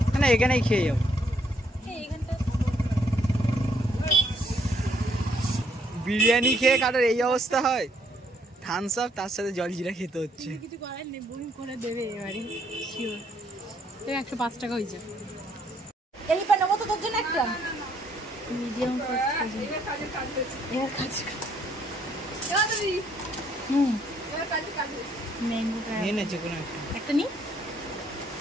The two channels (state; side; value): normal; both; correlation 0.69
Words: না এখানেই খেয়ে যাবো। বিরিয়ানি খেয়ে কারোর এই অবস্থা হয়, থামস আপ তার সাথে জলজিরা খেতে হচ্ছে। কিছু করার নেই, বমি করে দেবে এবারে শিওর। 105 টাকা হয়েছে। এই পা নেবো তো তোর জন্য একটা মিডিয়াম ফাস্ট কাজে এর কাছে। ম্যাঙ্গো নিয়ে নেছে কোনো একটা নি,